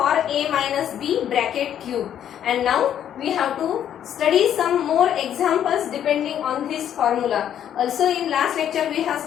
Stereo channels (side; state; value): right; quieter; 10.0 dB